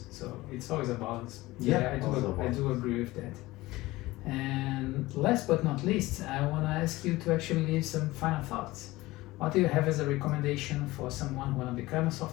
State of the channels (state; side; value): quieter; right; 19.2 dB